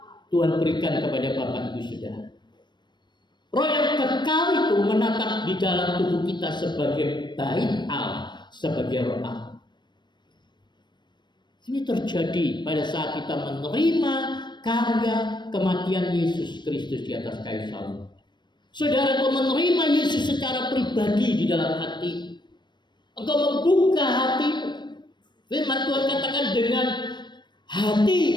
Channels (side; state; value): right; late; 0.22 ms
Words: Tuhan berikan kepada Bapak Ibu Saudara. Roh yang kekal itu menatap di dalam tubuh kita sebagai bait Allah, sebagai roh Allah. Ini terjadi pada saat kita menerima karya kematian Yesus Kristus di atas kayu salib. Saudara, engkau menerima Yesus secara pribadi di dalam hati. Engkau membuka hatimu. Firman Tuhan katakan dengan